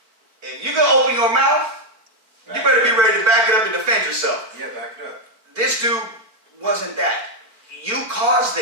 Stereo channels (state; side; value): late; left; 4.5 ms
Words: If you gonna open your mouth, you better be ready to back it up and defend yourself. Yeah, back it up. This dude wasn't that. You caused